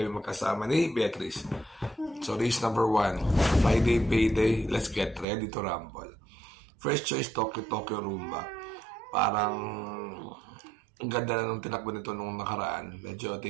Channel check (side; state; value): left; drops out; at 5.2 s